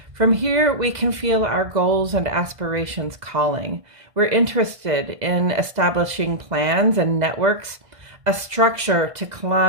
From here, we can feel our goals and aspirations calling. We're interested in establishing plans and networks, a structure to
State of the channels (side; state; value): left; late; 2.0 ms